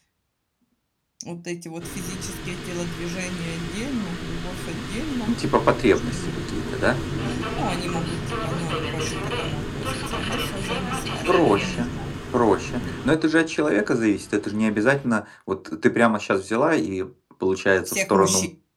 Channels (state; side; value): identical; both; correlation 1.00